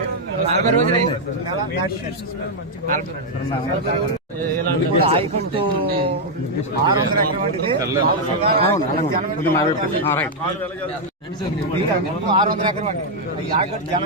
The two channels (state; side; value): normal; both; correlation -0.01